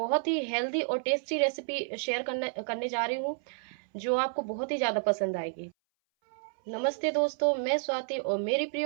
ही हेल्दी और टेस्टी रेसिपी शेयर करने करने जा रही हूँ जो आपको बहुत ही ज़्यादा पसंद आएगी। नमस्ते दोस्तों, मैं स्वाति और मेरी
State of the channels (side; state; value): left; silent; 58 dB below the other